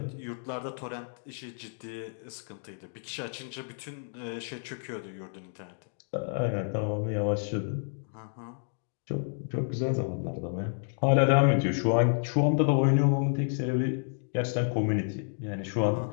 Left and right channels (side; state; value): right; silent; digital silence